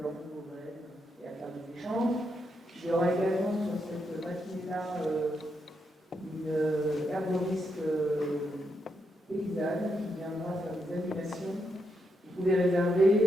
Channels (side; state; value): both; normal; correlation 0.81